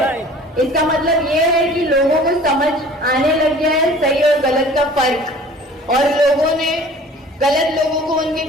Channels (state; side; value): normal; both; correlation 0.47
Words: इसका मतलब ये है कि लोगों को समझ आने लग गया है सही और गलत का फर्क, और लोगों ने गलत लोगों को उनके